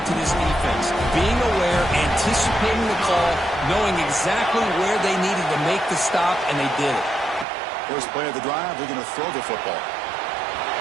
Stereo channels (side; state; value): left; drops out; at 7.5 s